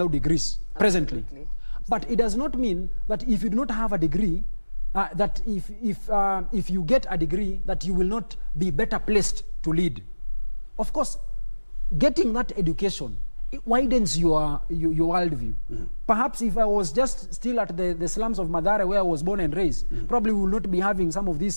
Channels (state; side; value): inverted; both; correlation -1.00